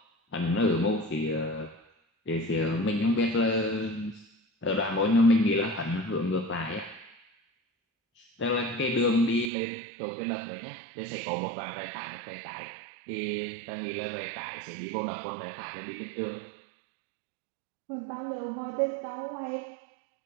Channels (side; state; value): left; drops out; at 9.5 s